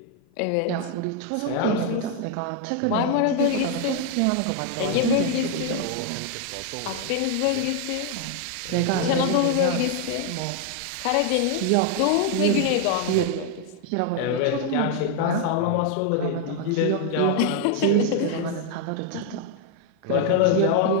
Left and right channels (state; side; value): different; both; correlation 0.00